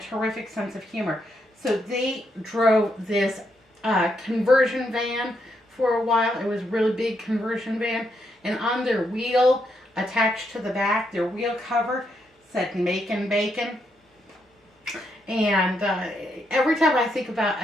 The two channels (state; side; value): normal; both; correlation 0.79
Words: sense of humor. So they drove this conversion van for a while. It was a really big conversion van, and on their wheel attached to the back, their wheel cover said "Makin' Bacon." And every time I